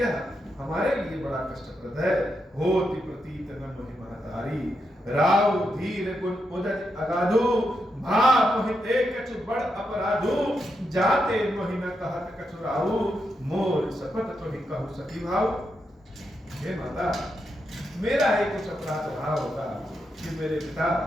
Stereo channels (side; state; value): both; normal; correlation 0.84